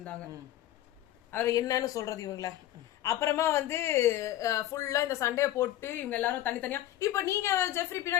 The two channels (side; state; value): right; quieter; 13.4 dB